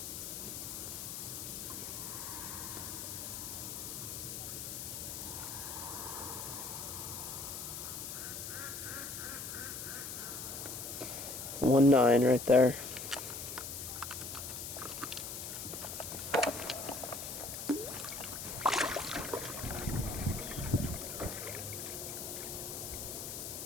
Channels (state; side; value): noise; left; hiss, 6 dB below the sound